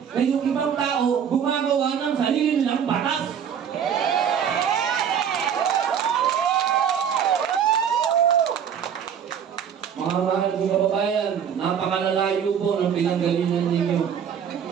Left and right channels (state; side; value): quieter; left; 8.1 dB